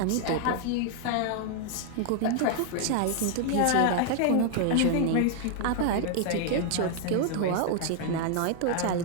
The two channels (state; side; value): different; both; correlation 0.00